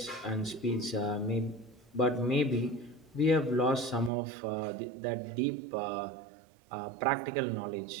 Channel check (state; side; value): drops out; left; at 4.1 s